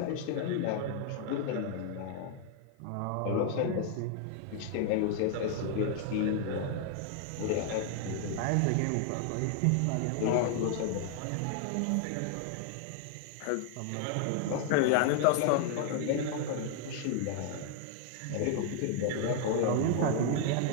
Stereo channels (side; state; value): both; different; correlation 0.00